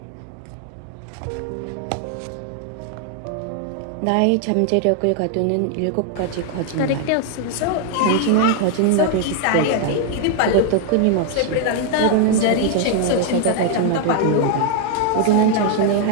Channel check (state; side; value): different; both; correlation 0.00